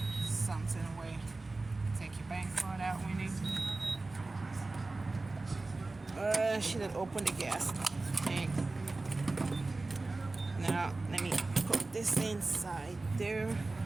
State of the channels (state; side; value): quieter; left; 3.3 dB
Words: something away. Take your bank card out, Winnie. Should have opened the gas tank. Now, let me put this inside there.